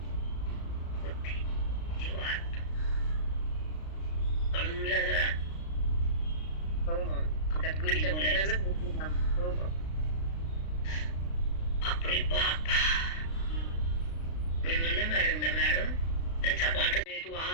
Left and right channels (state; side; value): late; right; 36 ms